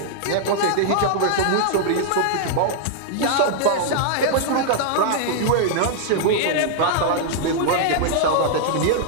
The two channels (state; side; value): different; both; correlation -0.01